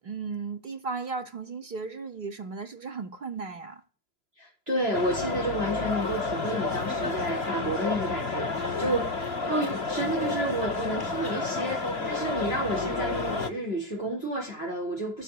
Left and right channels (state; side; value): late; left; 3.0 ms